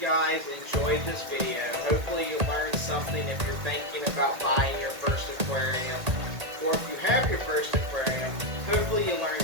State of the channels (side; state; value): left; late; 1.8 ms